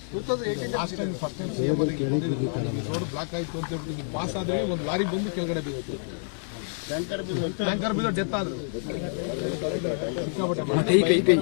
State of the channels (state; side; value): silent; right; digital silence